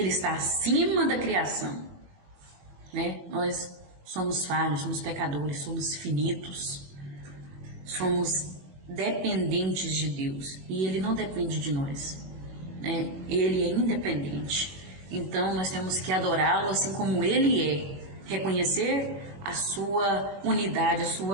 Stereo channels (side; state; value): left; late; 21 ms